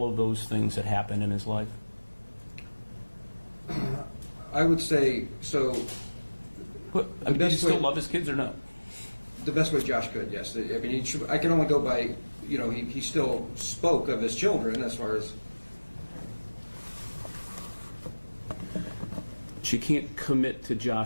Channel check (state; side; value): inverted; both; correlation -1.00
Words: of those things that happened in his life? I would say so. Did he still love his kids or no? The best way Josh could, yes. I mean, I can only go by, he still spoke of his children as far as. She can't commit to